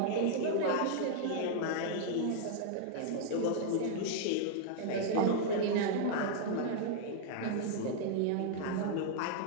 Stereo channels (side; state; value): both; different; correlation -0.01